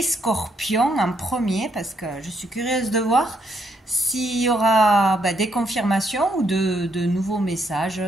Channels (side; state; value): both; normal; correlation 0.74